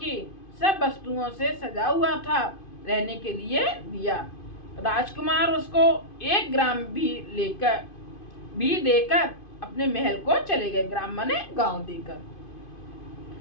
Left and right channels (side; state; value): right; late; 2.5 ms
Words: सब वस्तुओं से सजा हुआ था रहने के लिए दिया। राजकुमार उसको 1 ग्राम भी देकर अपने महल को चले गए। ग्राम माने गांव देकर।